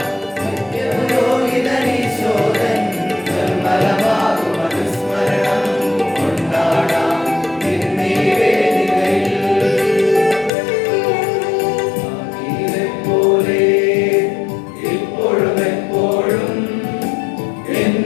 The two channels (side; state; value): right; drops out; at 10.5 s